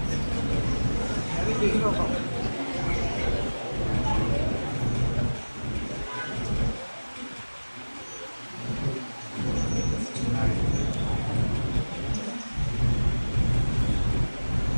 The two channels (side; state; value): both; inverted; correlation -1.00